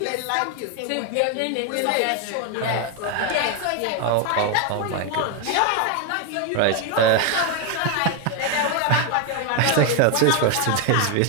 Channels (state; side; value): different; both; correlation 0.01